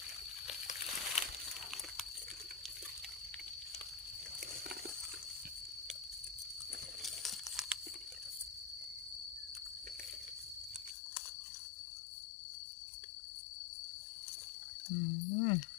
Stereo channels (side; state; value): right; drops out; at 11.0 s